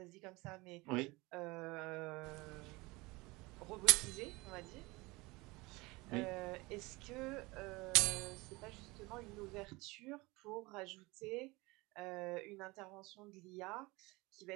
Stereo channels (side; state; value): left; quieter; 23.1 dB